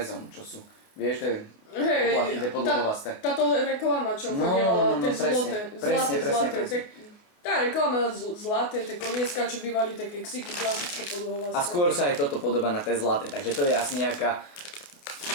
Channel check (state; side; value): late; right; 29 ms